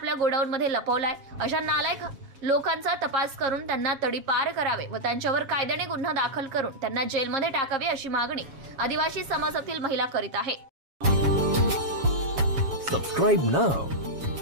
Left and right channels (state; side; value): late; left; 7.3 ms